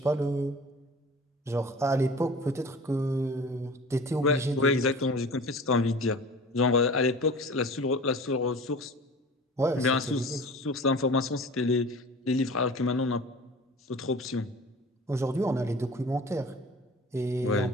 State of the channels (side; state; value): both; normal; correlation 0.40